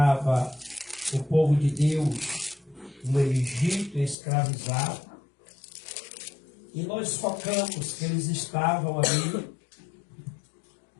o povo de Deus no Egito escravizado. E nós focamos que eles estavam ali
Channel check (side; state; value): right; drops out; at 4.2 s